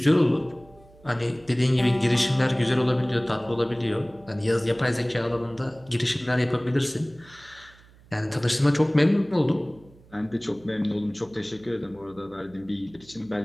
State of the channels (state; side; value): noise; right; hum, 26 dB below the sound